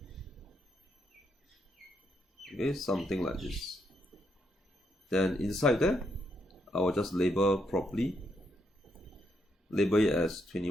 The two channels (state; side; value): normal; both; correlation 0.78